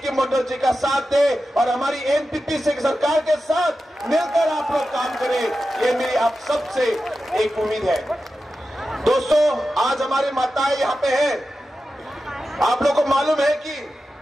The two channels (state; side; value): normal; both; correlation 0.92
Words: मंडल जी का साथ दें और हमारी एनपीपी से सरकार के साथ मिलकर आप लोग काम करें। ये मेरी आप सबसे एक उम्मीद है। दोस्तों, आज हमारी माताएं यहाँ पे हैं। आप लोगों को मालूम है कि